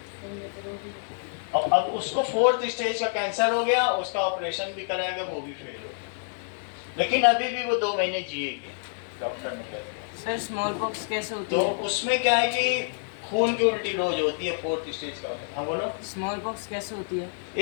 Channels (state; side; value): silent; right; 60 dB below the other